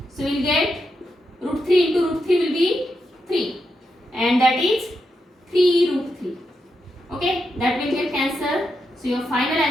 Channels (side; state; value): both; normal; correlation 0.85